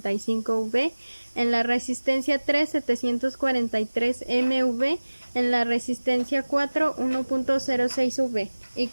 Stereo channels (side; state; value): both; inverted; correlation -1.00